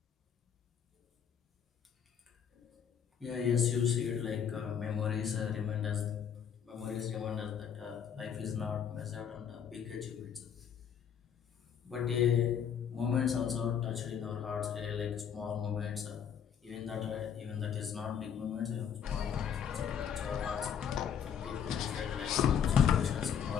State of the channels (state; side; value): quieter; right; 8.0 dB